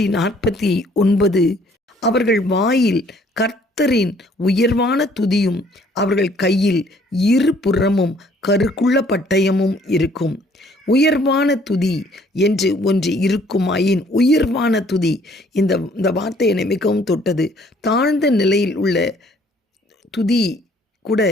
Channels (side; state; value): both; normal; correlation 0.60